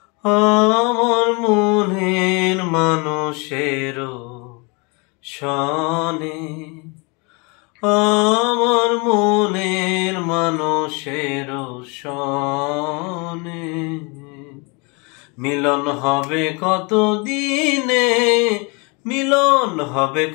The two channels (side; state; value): right; quieter; 30.5 dB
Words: আমার মনের মানুষের সনে, আমার মনের মানুষের সনে। মিলন হবে কত দিনে, মিলন হবে